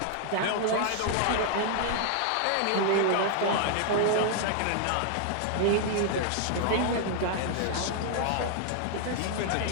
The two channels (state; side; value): different; both; correlation 0.00